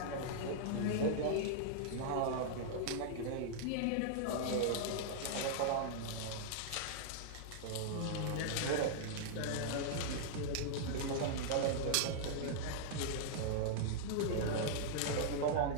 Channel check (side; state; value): both; different; correlation -0.02